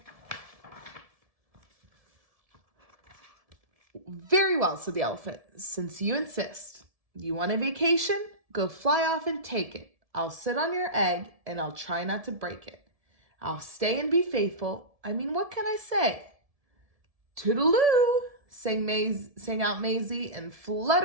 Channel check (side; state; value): left; late; 1.7 ms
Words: Very well, said the elephant, since you insist. You want a vacation? Go fly off and take it. I'll sit on your egg and I'll try not to break it. I'll stay and be faithful. I mean, what can I say? Toodaloo, sang out Maisie and